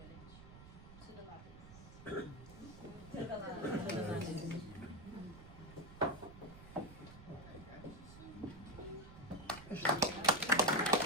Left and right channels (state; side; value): noise; right; rumble, 16 dB below the sound